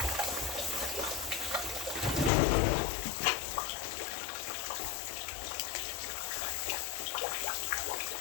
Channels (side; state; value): right; drops out; at 2.3 s